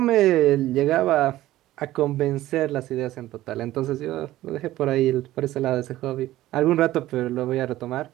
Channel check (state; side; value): quieter; left; 15.3 dB